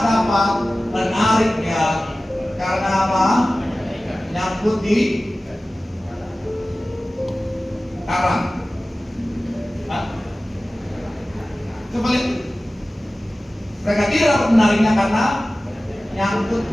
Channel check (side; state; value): both; normal; correlation 0.97